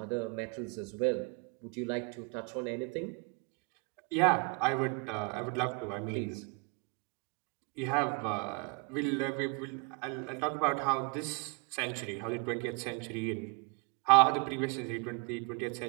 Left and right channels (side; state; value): left; quieter; 33.2 dB